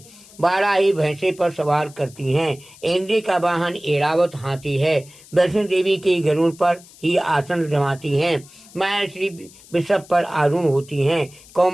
12 ही भैंसे पर सवार करती हैं। इंद्र का वाहन एरावत हाथी है। वैष्णो देवी के गरुड़ पर ही आसन जमाती हैं। माया श्री वृषभ पर आरूढ़ होती हैं।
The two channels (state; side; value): noise; left; hiss, 23 dB below the sound